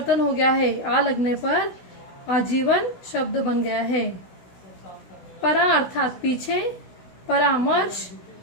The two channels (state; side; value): late; right; 16 ms